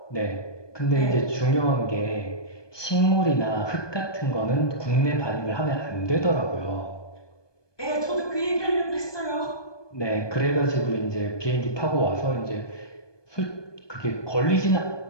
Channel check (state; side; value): late; right; 1.2 ms